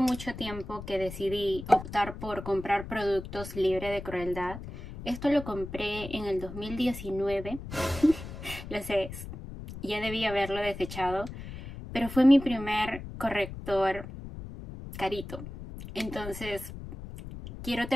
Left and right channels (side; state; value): left; noise; rumble, 11 dB below the sound